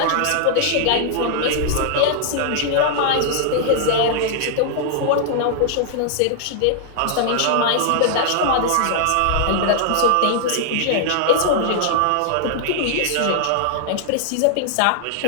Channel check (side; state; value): both; different; correlation -0.01